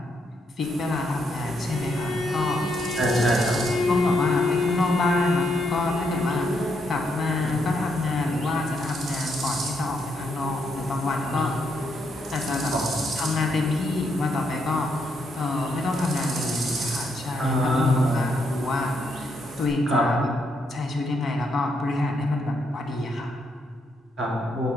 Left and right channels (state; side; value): normal; both; correlation 0.77